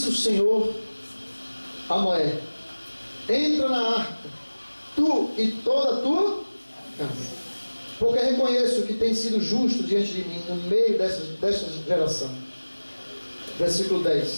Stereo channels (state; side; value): inverted; both; correlation -1.00